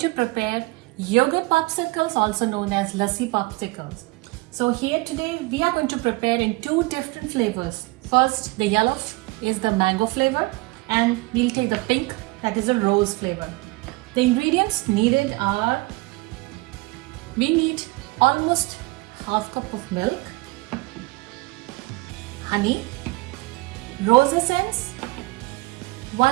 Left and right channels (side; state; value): left; quieter; 23.2 dB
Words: prepare yogurt popsicles, also known as lassi popsicles. So here today we are going to prepare in two different flavors. First, the yellow is the mango flavor and we'll take the pink, that is a rose flavor. The ingredients needed are, we need almost half cup of milk, honey, rose essence,